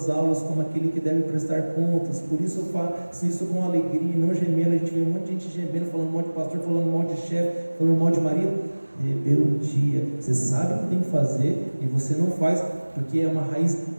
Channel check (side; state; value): both; inverted; correlation -1.00